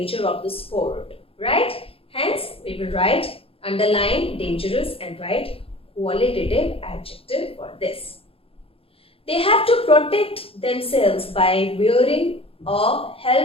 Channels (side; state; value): right; late; 0.27 ms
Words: of the sport, right? Hence, we will write, underline dangerous and write qualitative adjective for this. They have to protect themselves by wearing a